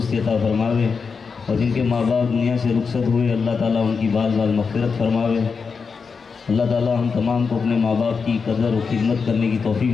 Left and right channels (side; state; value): right; quieter; 5.3 dB